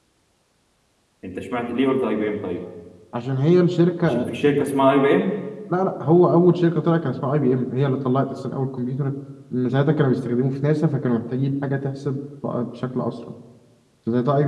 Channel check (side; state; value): both; identical; correlation 1.00